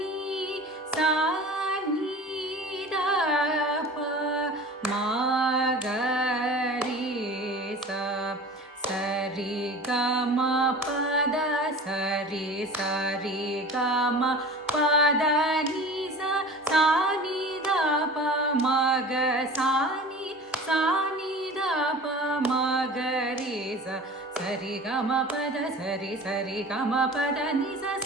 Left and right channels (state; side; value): normal; both; correlation 0.39